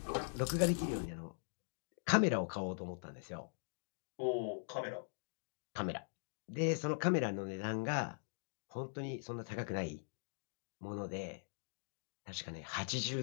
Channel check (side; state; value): right; silent; digital silence